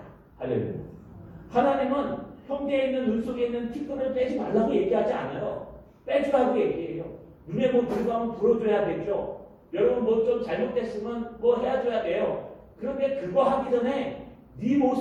할렐루야. 하나님은 형제에 있는 눈 속에 있는 티끌을 빼지 말라고 얘기하지 않아요. 빼주라고 얘기해요. 눈에 뭐 들어가면 불어줘야 되죠. 여러분 뭐 좀 잘못됐으면 뭐 해줘야 돼요. 그런데 그거 하기 전에 네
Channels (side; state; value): both; identical; correlation 1.00